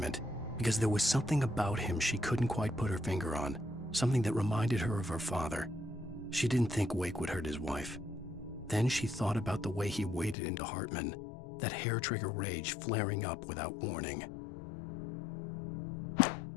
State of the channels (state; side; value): drops out; right; at 10.4 s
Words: because there was something about him she couldn't quite put her finger on, something that reminded her of her father. She didn't think Wake would hurt his wife. Then she thought about the way he waded into Hartman, that hair-trigger rage flaring up without warning.